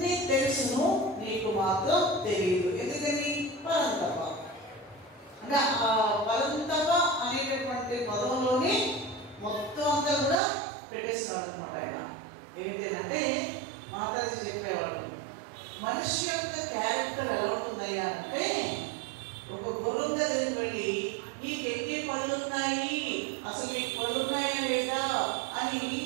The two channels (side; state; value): left; drops out; at 10.4 s